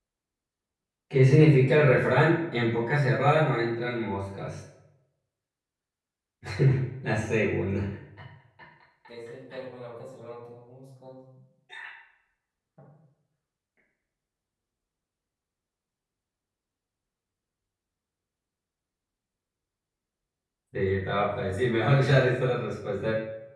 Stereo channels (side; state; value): both; identical; correlation 1.00